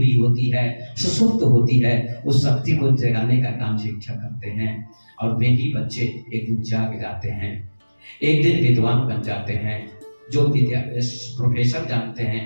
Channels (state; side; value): inverted; both; correlation -1.00